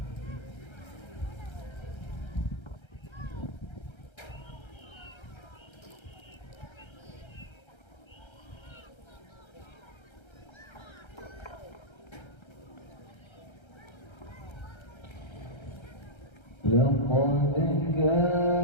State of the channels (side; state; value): right; late; 1.3 ms